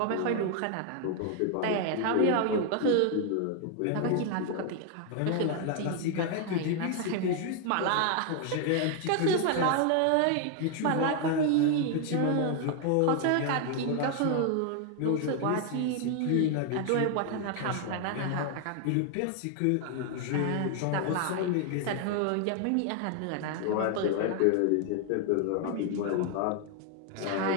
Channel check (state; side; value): different; both; correlation 0.00